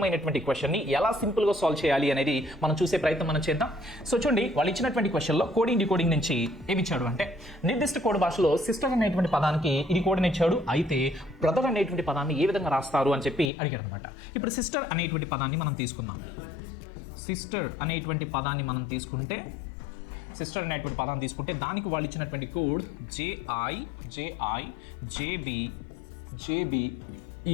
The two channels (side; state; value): right; drops out; at 13.5 s